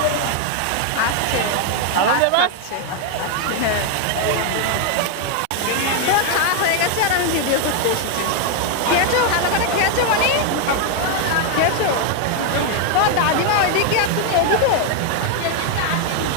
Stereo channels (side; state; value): both; different; correlation 0.00